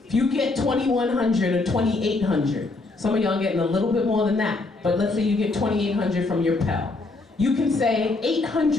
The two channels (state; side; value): quieter; right; 3.3 dB